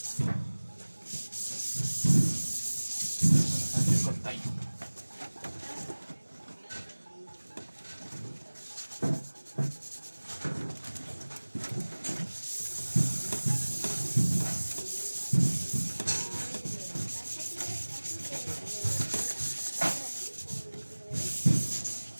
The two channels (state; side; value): inverted; both; correlation -1.00